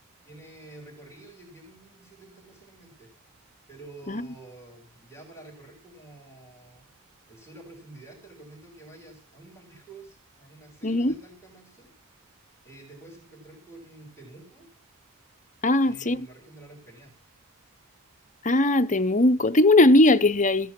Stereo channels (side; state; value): both; normal; correlation 0.45